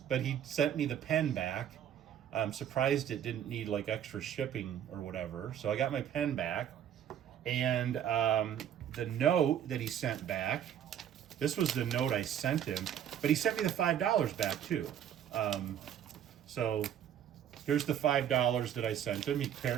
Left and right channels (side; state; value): left; quieter; 9.9 dB